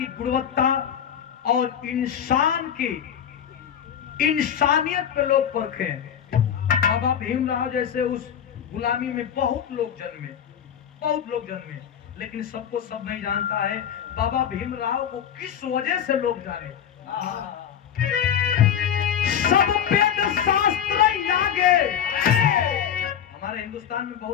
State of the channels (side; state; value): right; quieter; 9.0 dB